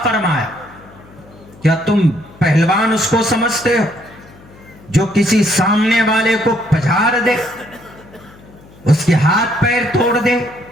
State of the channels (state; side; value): noise; left; hum, 24 dB below the sound